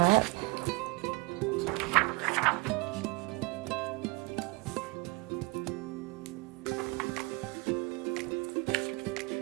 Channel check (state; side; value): quieter; left; 25.8 dB